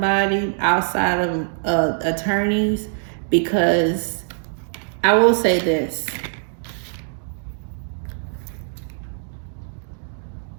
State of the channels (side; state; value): left; silent; digital silence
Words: outside of attorneys, because I will say this.